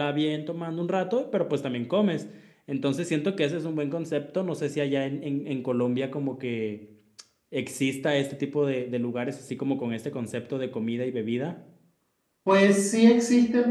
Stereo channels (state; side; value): identical; both; correlation 1.00